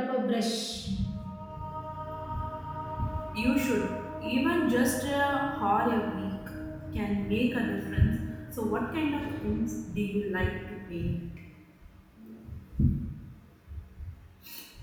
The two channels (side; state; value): both; identical; correlation 1.00